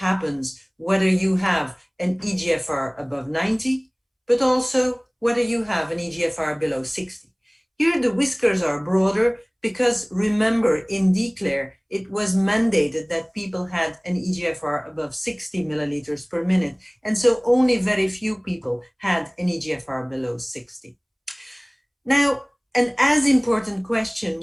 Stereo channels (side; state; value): both; identical; correlation 1.00